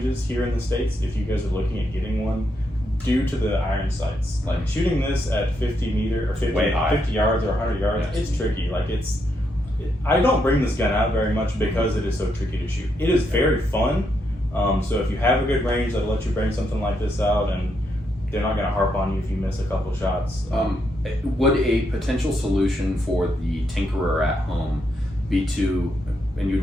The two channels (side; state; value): both; normal; correlation 0.79